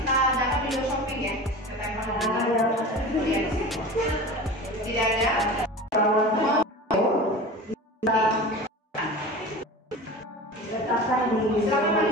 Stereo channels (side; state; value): both; normal; correlation 0.34